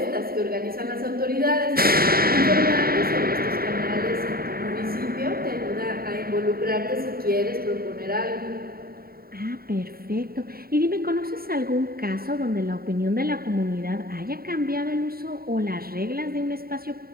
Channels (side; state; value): left; late; 0.43 ms